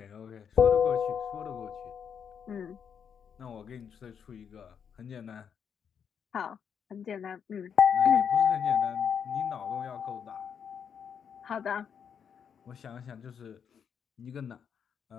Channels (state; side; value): quieter; right; 7.5 dB